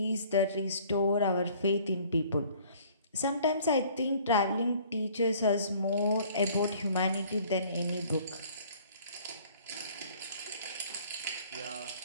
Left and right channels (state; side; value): inverted; both; correlation -0.54